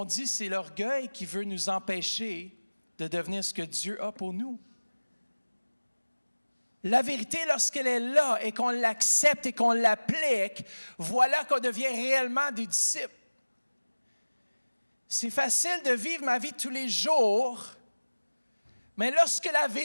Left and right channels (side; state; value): both; inverted; correlation -1.00